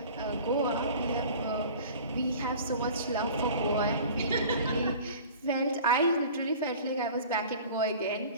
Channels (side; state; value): both; inverted; correlation -0.42